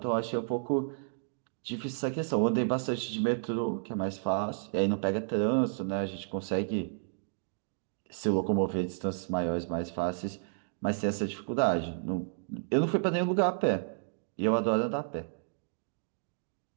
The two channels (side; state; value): left; silent; digital silence